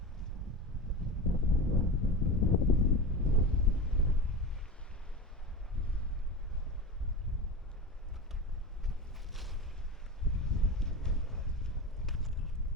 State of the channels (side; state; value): both; normal; correlation 0.27